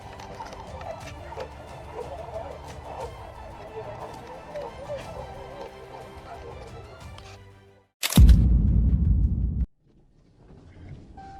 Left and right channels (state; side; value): identical; both; correlation 1.00